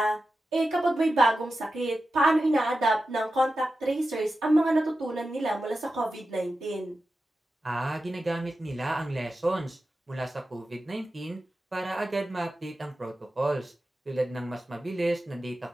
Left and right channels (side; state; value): both; normal; correlation 0.92